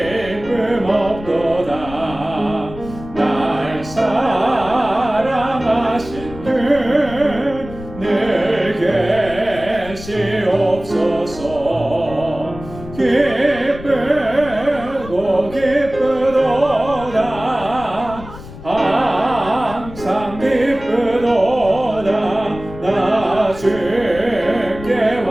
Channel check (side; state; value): left; noise; rumble, 14 dB below the sound